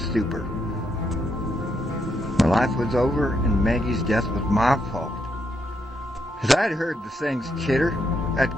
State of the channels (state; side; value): normal; both; correlation 0.78